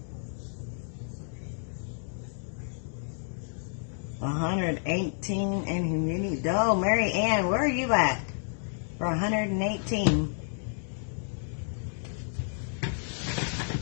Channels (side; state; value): right; silent; digital silence